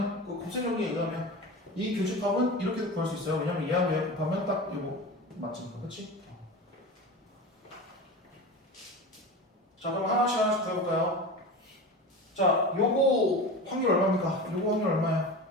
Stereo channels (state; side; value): normal; both; correlation 0.29